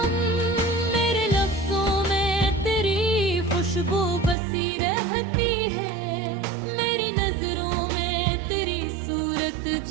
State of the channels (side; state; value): left; drops out; at 4.4 s